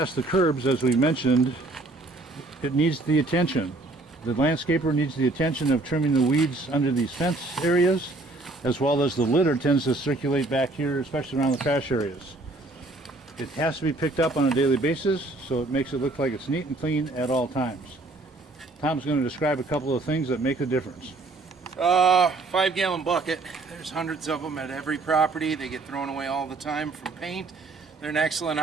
the curbs, as we mentioned, it needs the attention. The landscaper needs the attention of trimming the weeds under these fence areas, as well as the litter tends to circulate back here, especially around the trash areas. It has to be picked up on a daily basis, so it makes it look like it's neat and clean at all times. Tom's going to describe a couple of things that make a difference. 5-gallon bucket. There's hundreds of them at every property. They get thrown away all the time from paint. They're an excellent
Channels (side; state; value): left; quieter; 3.0 dB